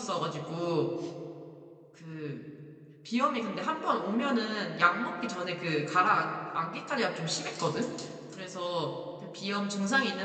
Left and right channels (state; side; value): identical; both; correlation 1.00